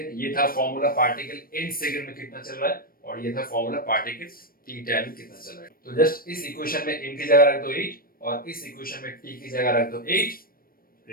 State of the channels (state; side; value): late; right; 0.42 ms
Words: ये था फॉर्मूला पार्टिकल n सेकंड में कितना चल रहा है, और ये था फॉर्मूला पार्टिकल t टाइम में कितना चल रहा है। तो जस्ट इस इक्वेशन में n की जगह रख दो 8 और इस इक्वेशन में t की जगह रख दो 8,